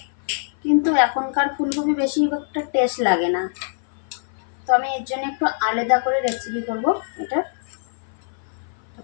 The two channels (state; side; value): silent; right; 56 dB below the other